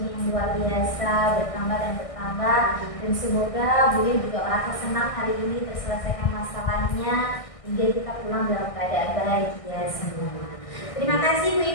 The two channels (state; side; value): late; right; 1.6 ms